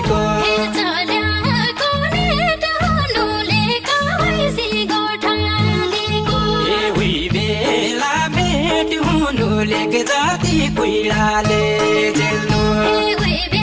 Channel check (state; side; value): identical; both; correlation 1.00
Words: बेला भेट हुनु लेक जाति कुइराले जेल्नु